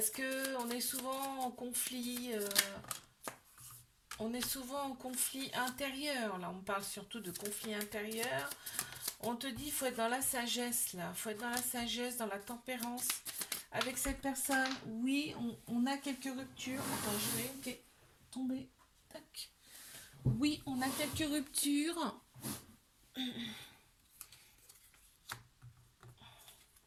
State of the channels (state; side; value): identical; both; correlation 1.00